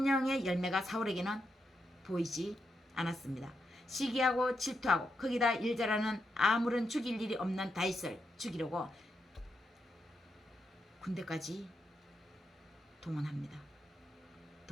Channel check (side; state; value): both; normal; correlation 0.83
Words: 열매가 사울에게는 보이지 않았습니다. 시기하고 질투하고 거기다 일 잘하는 아무런 죽일 일이 없는 다윗을 죽이려고 군대까지 동원했습니다.